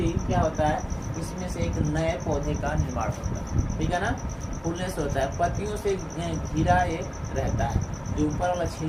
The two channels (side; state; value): both; identical; correlation 1.00